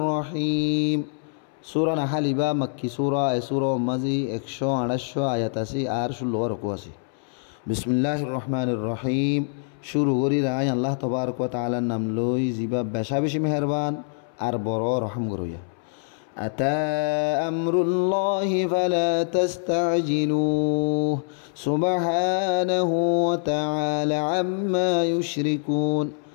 রহিম। সূরা নাহল বা মক্কি সূরা। এই সূরা মাঝে 128 আয়াত আছে আর 16 রকু আছে। বিসমিল্লাহির রহমানির রহিম। শুরু করি রায় আল্লাহ তবারক ওয়া তাআলার নাম লই জিবা বেশা বেশি মেহেরবান আর বড় রহম গরইয়া। আতা আমরুল্লাহি ফালা তাস্তাজিলুহ সুবহানাহু ওয়া তাআলা আম্মা ইউশরিকুন।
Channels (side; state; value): right; silent; 62 dB below the other